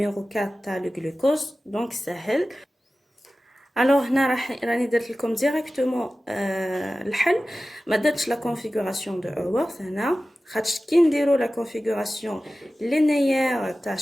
4 تاع le glucose donc سهل. alors هنا راني درت لكم ديريكتومون الحل ما درتش لا configuration de Haworth هنا خاطش كي نديرو لا configuration لينيير تاع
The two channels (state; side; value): normal; both; correlation 0.95